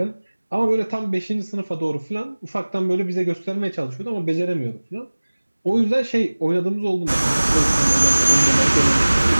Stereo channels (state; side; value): inverted; both; correlation -1.00